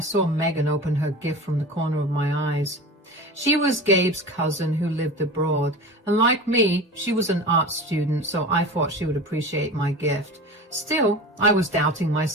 Megan open her gift from the corner of my eyes. She was Gabe's cousin who lived abroad, and like me, she was an art student, so I thought she would appreciate my gift. Still, I was doubting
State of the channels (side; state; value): both; normal; correlation 0.33